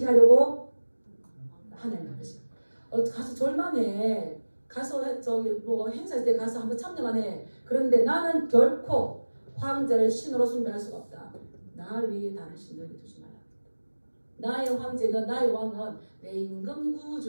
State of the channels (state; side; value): inverted; both; correlation -1.00